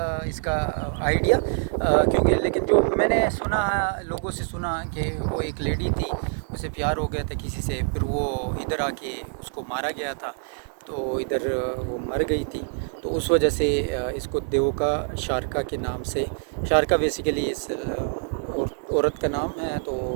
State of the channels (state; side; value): silent; left; 61 dB below the other